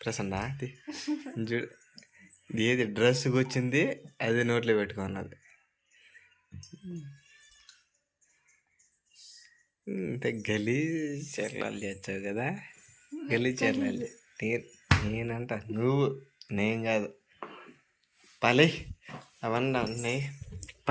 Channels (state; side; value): identical; both; correlation 1.00